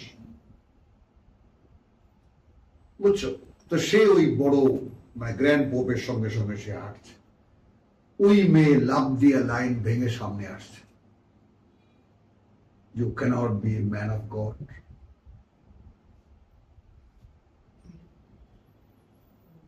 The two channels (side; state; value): both; identical; correlation 1.00